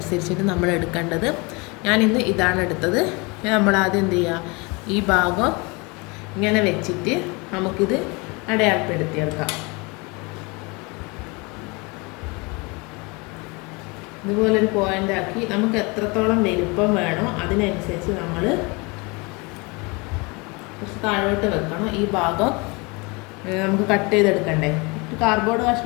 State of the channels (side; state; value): right; quieter; 27.9 dB